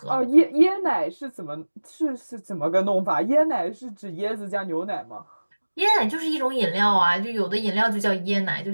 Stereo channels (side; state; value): both; inverted; correlation -1.00